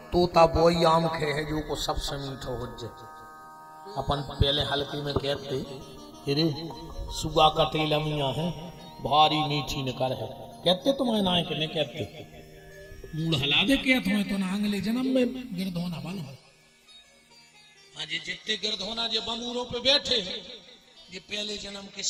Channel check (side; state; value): both; identical; correlation 1.00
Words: तोता वही आम खे है जो को सबसे मीठो हो जाए। अपन पहले हल्के में कहते अरे सुगा कटेल अमिया है भारी मीठी निकर है, कहते तुम्हें ना कि नहीं कहते। मूड हला दे क्या तुम्हें तो ना अगले जन्म में गिरद होना बनो। हाँ जी, जितने गिरद होना जो बमूरों पे बैठे हैं, ये पहले जन्म के